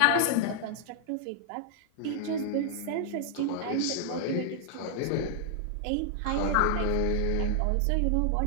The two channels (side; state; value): both; different; correlation -0.01